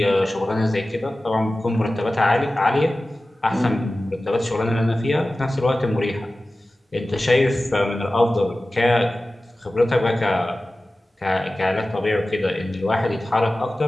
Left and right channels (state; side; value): normal; both; correlation 0.96